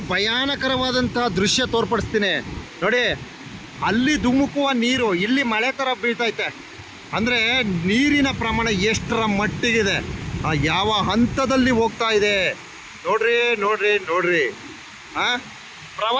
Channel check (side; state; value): both; identical; correlation 1.00